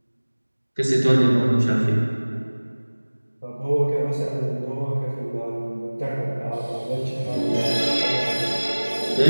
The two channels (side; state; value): both; inverted; correlation -1.00